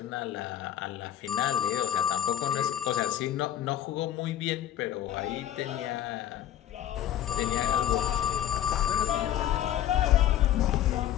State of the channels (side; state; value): right; quieter; 11.4 dB